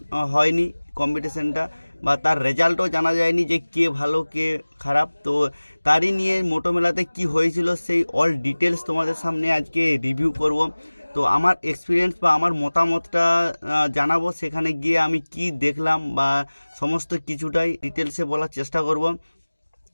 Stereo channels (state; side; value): inverted; both; correlation -1.00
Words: হয়নি কম্পিটিশানটা, বা তার রেজাল্টও জানা যায়নি যে কে ভালো কে খারাপ। তো তারই নিয়ে মোটো মেলাতে কী হয়েছিল সেই অল ডিটেলস তোমাদের সামনে আজকে রিভিউ করব। তো আমার এক্সপিরিয়েন্স বা আমার মতামতটা জানাবো, সেখানে গিয়ে আমি কি দেখলাম বা সমস্ত কিছুটাই ডিটেলসে বলার চেষ্টা করব।